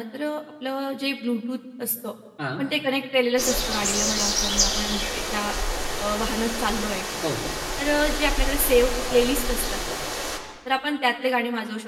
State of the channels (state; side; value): identical; both; correlation 1.00